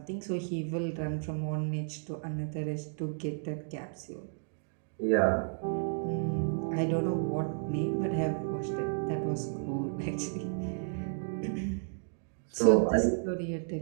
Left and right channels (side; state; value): left; silent; digital silence